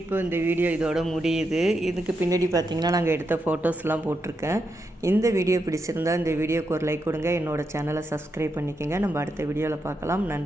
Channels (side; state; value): both; normal; correlation 0.84